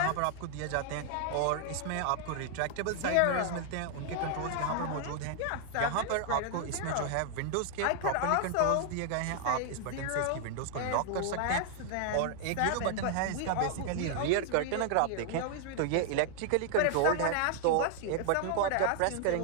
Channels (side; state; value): both; different; correlation 0.00